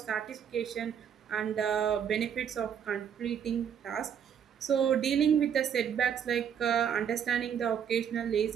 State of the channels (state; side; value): quieter; left; 8.3 dB